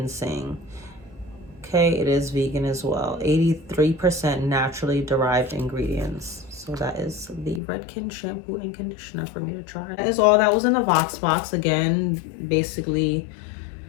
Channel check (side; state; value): right; drops out; at 7.6 s